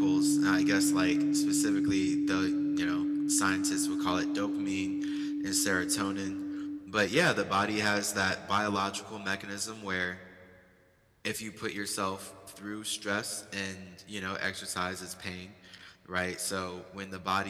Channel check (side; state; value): both; identical; correlation 1.00